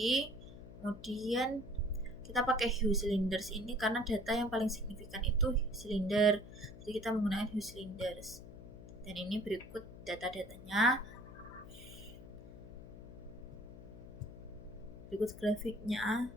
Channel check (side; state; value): left; noise; hum, 15 dB below the sound